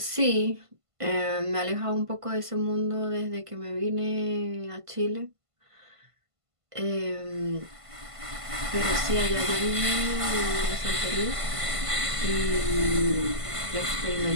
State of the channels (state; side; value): late; left; 1.5 ms